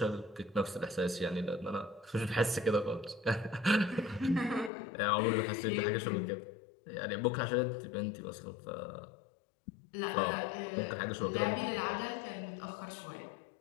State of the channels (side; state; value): right; drops out; at 4.7 s